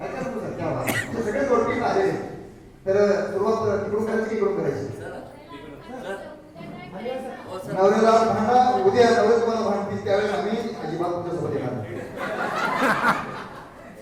सगळे जोडपीत आलेले. तर सुरुवात तिकडून करायची की इकडून करायची? नवऱ्याला भांडा, उद्या नवरे तुम्हाला भांडतील त्यावेळेस आम्ही अजिबात तुमच्यासोबत येणार.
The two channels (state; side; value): identical; both; correlation 1.00